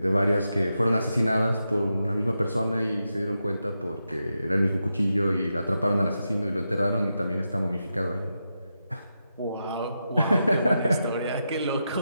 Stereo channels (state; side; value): inverted; both; correlation -0.87